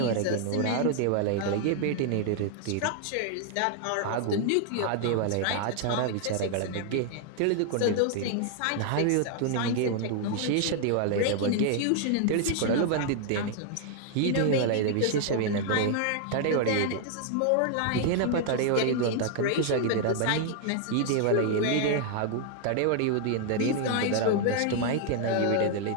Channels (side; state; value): both; different; correlation 0.00